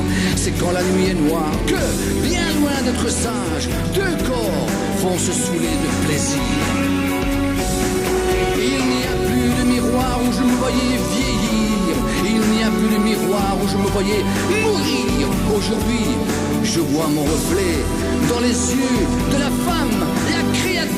C'est quand la nuit est noire que, bien loin d'être sage, deux corps vont se saouler de plaisir. Il n'y a plus de miroir où je me voyais vieillir. Il n'y a plus de miroir où je me voyais mourir. Aujourd'hui, je vois mon reflet dans les yeux de la femme, la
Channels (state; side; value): noise; right; hum, 16 dB below the sound